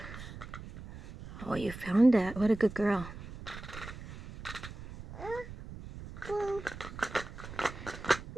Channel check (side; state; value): right; noise; rumble, 12 dB below the sound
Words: Oh, you found that. What a good girl.